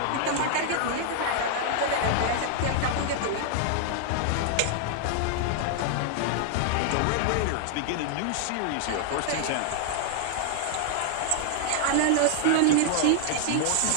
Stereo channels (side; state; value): both; different; correlation 0.00